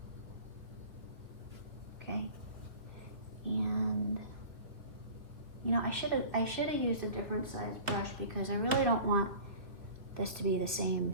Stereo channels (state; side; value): late; left; 2.2 ms